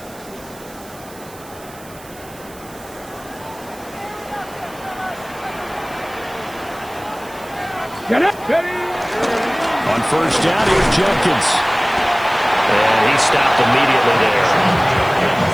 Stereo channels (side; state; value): right; noise; hiss, 21 dB below the sound